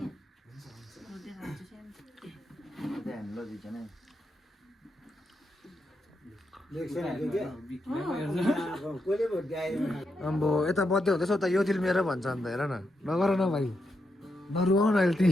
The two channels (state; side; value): normal; both; correlation 0.83